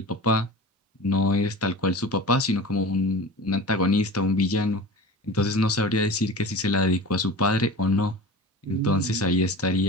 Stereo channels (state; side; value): normal; both; correlation 0.34